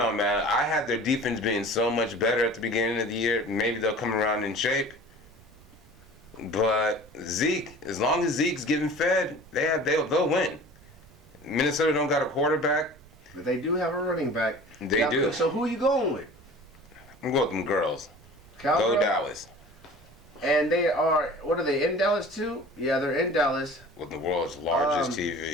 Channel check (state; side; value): noise; right; rumble, 25 dB below the sound